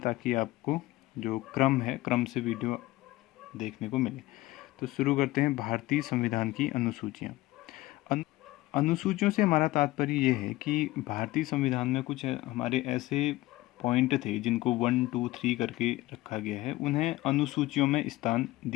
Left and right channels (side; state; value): right; quieter; 18.2 dB